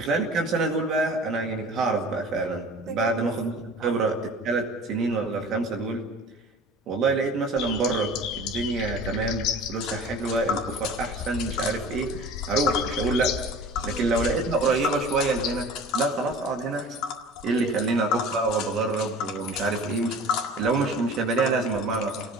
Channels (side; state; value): both; normal; correlation 0.42